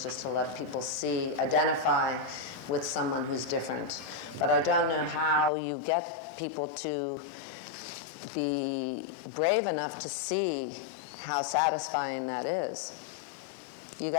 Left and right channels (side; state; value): right; drops out; at 5.5 s